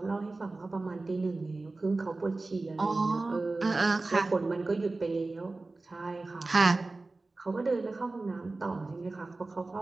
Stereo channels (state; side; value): quieter; left; 3.3 dB